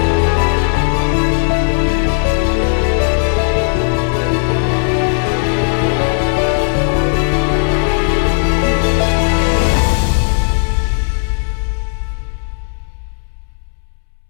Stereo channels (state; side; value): silent; right; digital silence